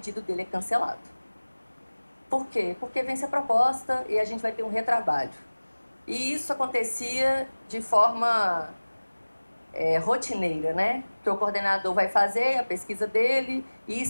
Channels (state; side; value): inverted; both; correlation -1.00